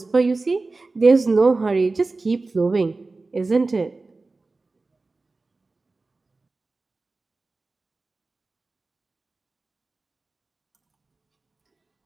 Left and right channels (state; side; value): quieter; left; 3.5 dB